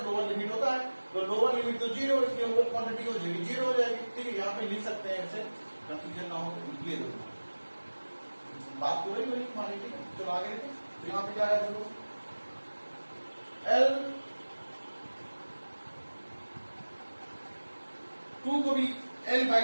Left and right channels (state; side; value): inverted; both; correlation -1.00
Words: lower limit होता है, तो लोअर लिमिट तो 0, इसलिए ओवर क्वांटिटी हो जाएगी 0 हो जाएगी, ठीक है। यहाँ पे लिख सकते हैं ऐसे, कंफ्यूजन ना हो तो लिखिए दो, बात तो वही हमारी, ठीक है। चलो आगे देखिए, तो यहाँ पे क्या है, देखो L2 को भी L/2